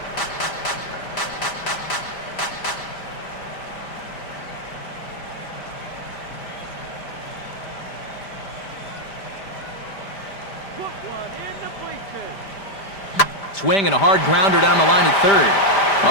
Swing and a hard grounder down the line at third.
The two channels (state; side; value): late; right; 5.1 ms